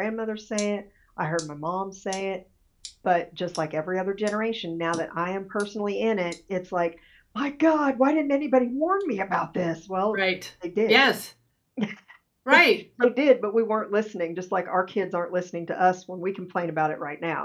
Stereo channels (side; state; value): both; identical; correlation 1.00